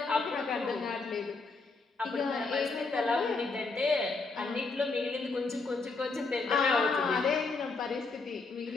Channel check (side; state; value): right; quieter; 3.9 dB